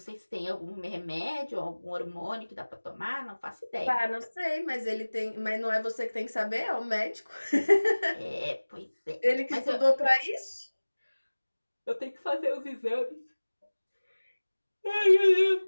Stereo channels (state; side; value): inverted; both; correlation -1.00